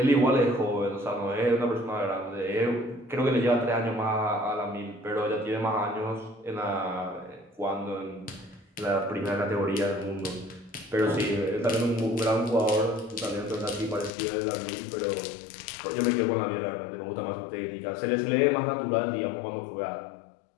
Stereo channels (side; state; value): right; drops out; at 14.1 s